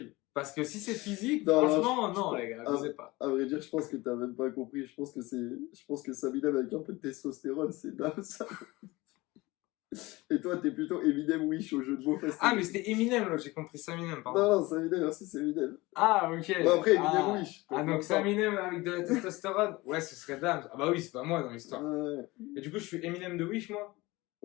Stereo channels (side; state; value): right; quieter; 21.3 dB